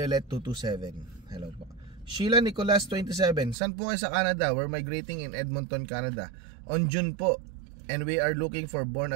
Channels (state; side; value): drops out; left; at 3.6 s